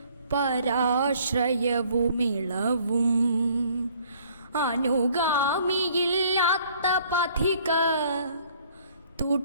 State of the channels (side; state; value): both; inverted; correlation -0.59